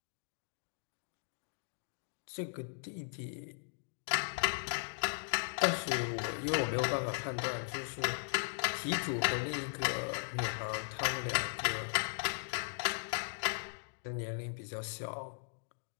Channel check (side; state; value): right; silent; digital silence